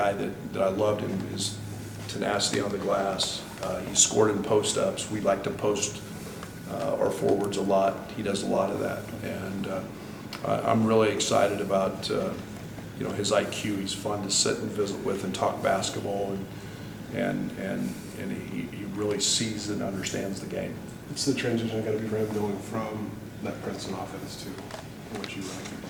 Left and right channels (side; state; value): both; identical; correlation 1.00